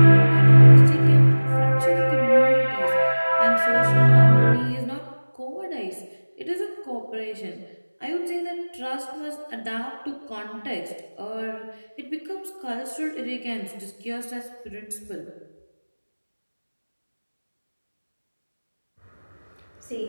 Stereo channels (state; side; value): inverted; both; correlation -1.00